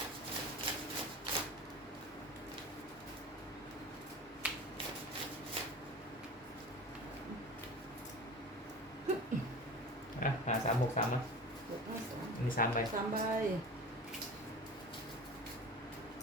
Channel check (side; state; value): both; normal; correlation 0.35